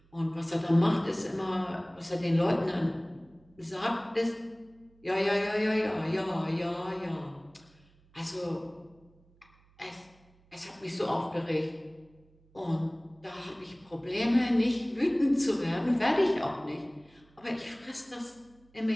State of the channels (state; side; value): noise; right; hum, 30 dB below the sound